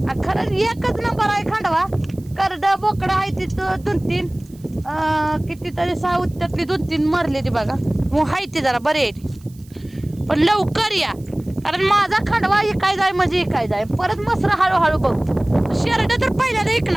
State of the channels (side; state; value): right; noise; hiss, 28 dB below the sound